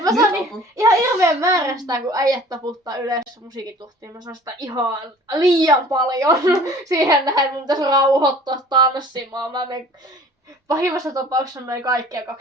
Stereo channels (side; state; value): both; normal; correlation 0.48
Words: mä saan ihan hirveän määrä sitä, kun äijät taputtaa yleensä musiikituhtiin. Mä saan sitä ihan liian paljon siihen nähden. Mun pitäisi rauhoittua tanssimaan. Mä menen pahimmassa tapauksessa noin kaikkia